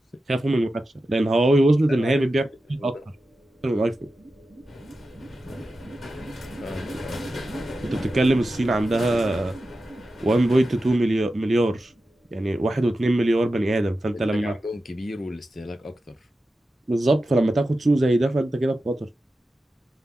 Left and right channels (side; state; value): both; normal; correlation 0.92